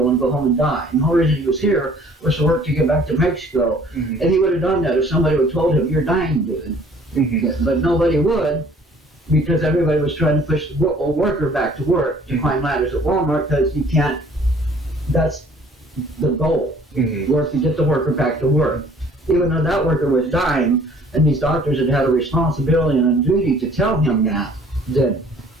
and go home and die. And the whole reason he was here was to work to get back to Mexico, and he would have done that if somebody would have told him, "You're dying, dude." But nobody would, because everybody was trying to push a worker back to work to climb ladders at Walmart, because you can't. That's the goal. Work to get the worker back to work. Even though that worker was dying, and these doctors had a responsibility and a duty to tell him that, then.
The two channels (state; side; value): normal; both; correlation 0.55